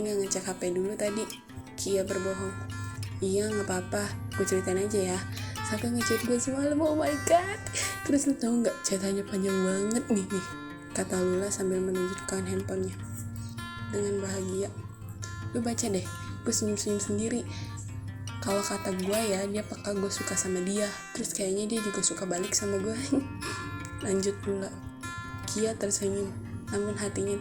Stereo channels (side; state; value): both; identical; correlation 1.00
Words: gak ngecek HP dulu tadi. Kia berbohong. Iya gak apa-apa, gue ceritain aja ya. Saka ngechat gue semalam, oh my god. Terus lu tau gak, chatanya panjang banget nih. Kata Lula sambil menunjukkan handphonenya. Dengan bahagia. Lu baca deh, gue senyum-senyum sendiri. Kalau kata gue ya, dia peka gue suka sama dia. Terus kayaknya dia juga suka balik sama gue. Lanjut Lula. Kia tersenyum, namun hatinya